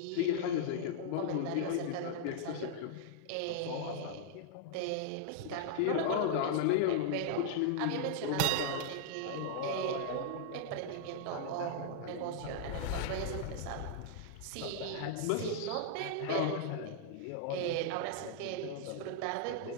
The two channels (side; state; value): both; different; correlation -0.01